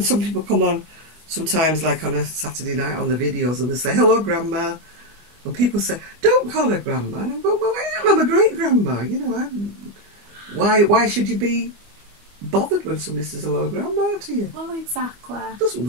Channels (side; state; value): left; late; 25 ms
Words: people come on, sometimes like on a Saturday night on the videos, and they say, "Hello, Grandma," and people say, "Don't call her Grandma." And I go, "Well, I am. I'm a great grandma. You know, why should you be bothered when somebody says hello, Grandma to you?" Well, exactly. Doesn't